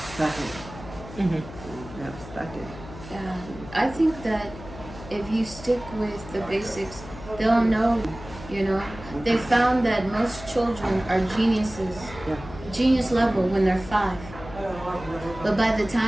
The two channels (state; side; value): noise; left; hum, 15 dB below the sound